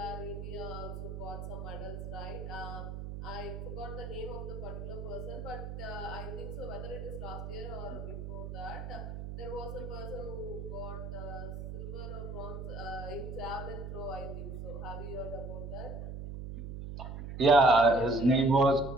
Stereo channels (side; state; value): right; noise; hum, 7 dB below the sound